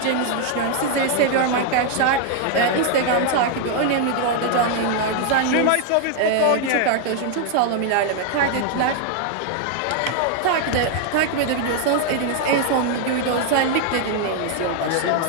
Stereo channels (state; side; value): different; both; correlation 0.00